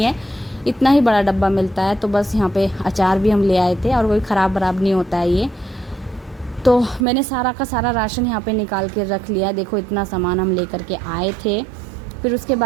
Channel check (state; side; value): drops out; left; at 7.1 s